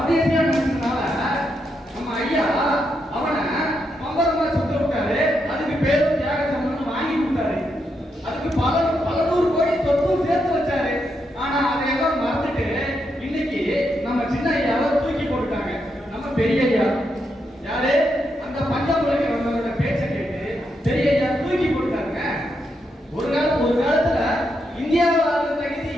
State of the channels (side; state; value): both; normal; correlation 0.82